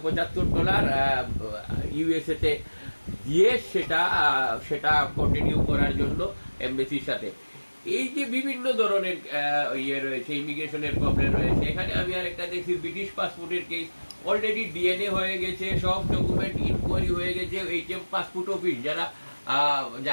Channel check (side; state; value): both; inverted; correlation -1.00